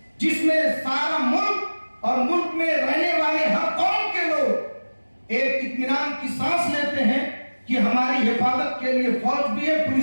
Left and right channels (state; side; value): inverted; both; correlation -1.00